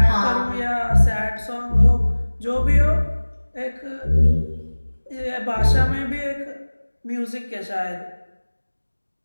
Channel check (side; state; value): both; inverted; correlation -1.00